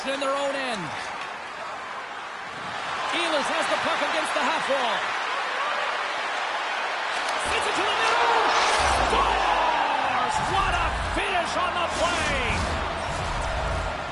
in their own end. Ehlers has the puck against the half wall. Sends it to the middle. Scores! What a finish on the play!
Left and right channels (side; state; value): both; identical; correlation 1.00